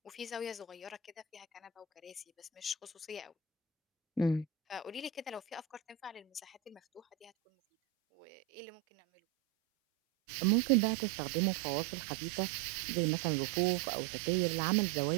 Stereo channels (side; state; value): left; drops out; at 7.3 s